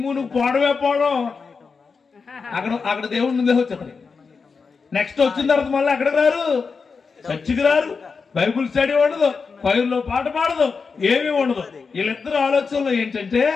పోవడమే పోవడం. అక్కడ దేవుడిని వచ్చేది. నెక్స్ట్ వచ్చిన తర్వాత మళ్ళీ అక్కడికి రారు, చర్చికి రారు, బైబుల్ స్టడీ ఉండదు, పైరులో పాట పాడదు, ఏమీ ఉండదు. వీళ్ళిద్దరు ఆలోచనలు ఏంటంటే,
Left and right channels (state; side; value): quieter; right; 5.1 dB